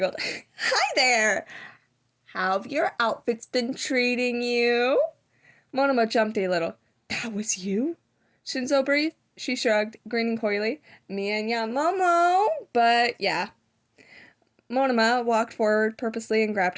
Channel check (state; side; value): identical; both; correlation 1.00